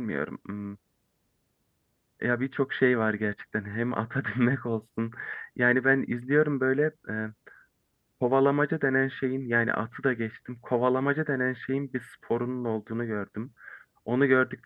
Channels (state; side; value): identical; both; correlation 1.00